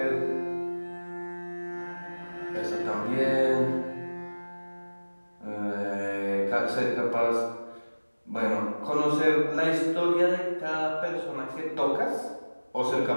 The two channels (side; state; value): both; inverted; correlation -1.00